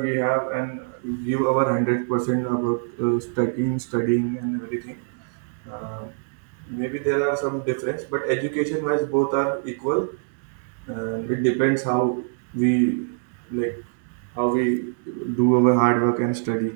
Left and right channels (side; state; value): left; silent; digital silence